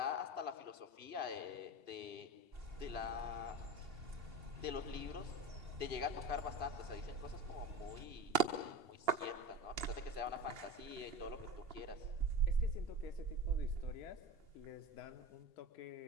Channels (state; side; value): late; left; 2.7 ms